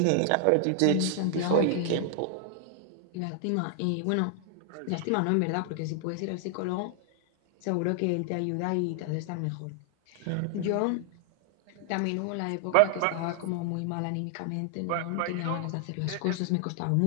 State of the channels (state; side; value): different; both; correlation 0.00